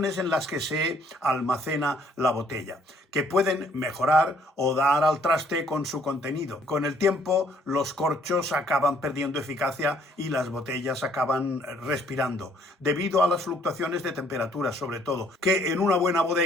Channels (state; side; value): normal; both; correlation 0.63